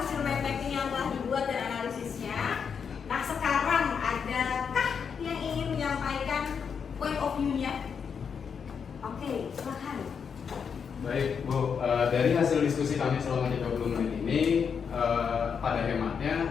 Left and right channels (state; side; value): quieter; right; 6.6 dB